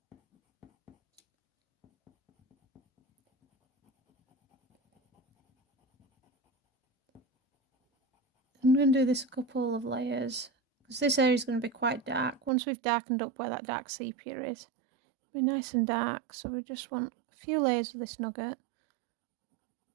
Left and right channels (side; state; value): left; drops out; at 12.5 s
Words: I'm going to do this a couple of layers because this area is going to be quite dark. Once we've darkened up where that dark sepia is, it'll be nice and dark, so we just want a few layers of this Nougat.